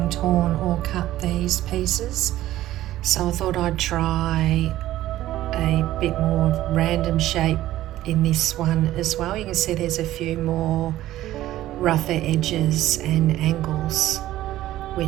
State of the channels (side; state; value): left; quieter; 14.5 dB